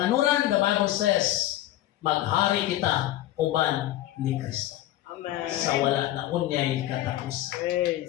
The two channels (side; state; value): right; quieter; 14.4 dB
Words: the Bible says, maghari kita uban ni Kristo. Amen. Sa wala na unyay katapusan.